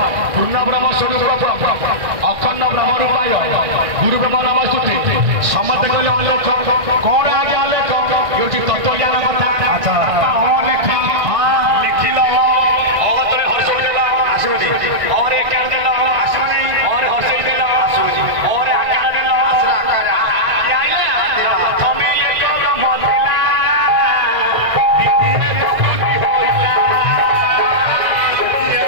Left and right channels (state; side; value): late; left; 1.6 ms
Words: पूर्ण ब्रह्म स्वरूप अखंड ब्रह्म रूपाय गुरु ब्रह्म नाम स्तुति समस्त कहले अलेख कौन आगे अलेख ये तत्व ज्ञान कथा अच्छा लिखिल अगतरे हर्षई देला आसुजी और एक कर देला आसुजी और हर्षई देला आसुजी और आकार देला आकार आइला प्रथमे एक ब्रह्म देला